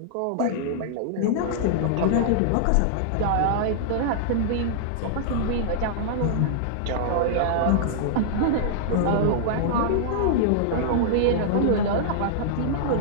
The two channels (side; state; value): both; different; correlation -0.02